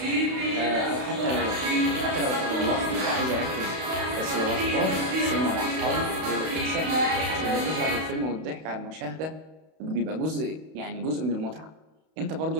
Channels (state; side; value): late; left; 32 ms